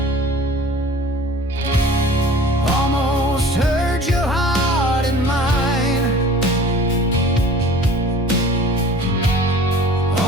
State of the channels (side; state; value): both; normal; correlation 0.45